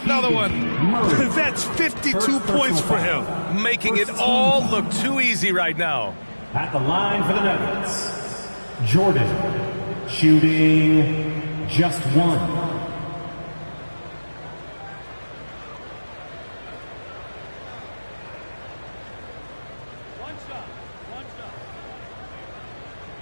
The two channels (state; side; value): inverted; both; correlation -1.00